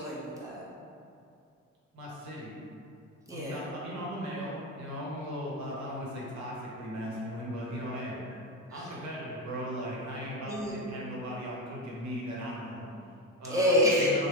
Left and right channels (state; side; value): normal; both; correlation 0.15